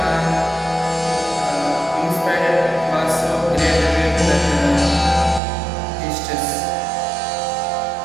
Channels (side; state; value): left; drops out; at 5.4 s